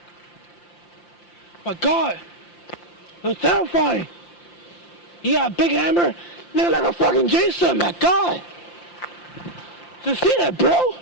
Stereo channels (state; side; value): late; right; 5.8 ms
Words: My God! It was terrifying! He got a big hammer, looking like a fucking Jason, my God! Did you see that, bro?